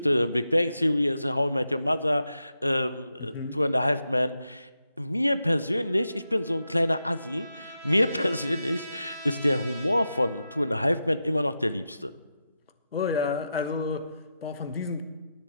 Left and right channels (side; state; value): both; inverted; correlation -0.87